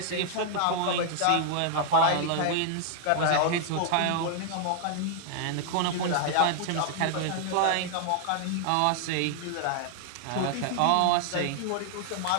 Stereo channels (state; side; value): different; both; correlation 0.00